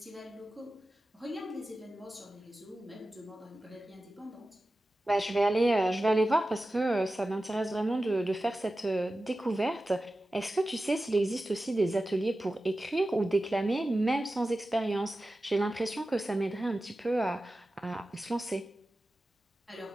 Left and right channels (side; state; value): both; normal; correlation 0.94